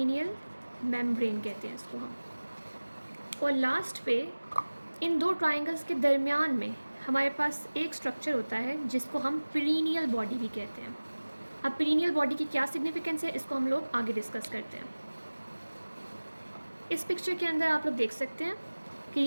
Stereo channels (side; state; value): both; inverted; correlation -1.00